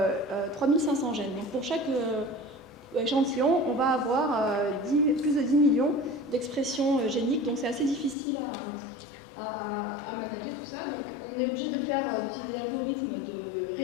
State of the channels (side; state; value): right; drops out; at 8.2 s